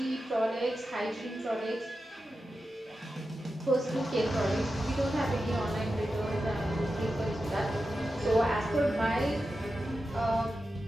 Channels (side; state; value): both; normal; correlation 0.91